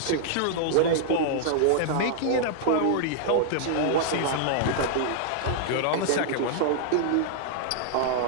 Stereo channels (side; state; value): both; different; correlation -0.01